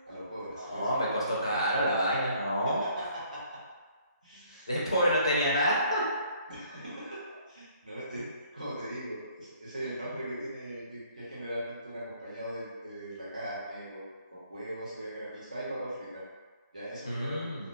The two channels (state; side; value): inverted; both; correlation -0.61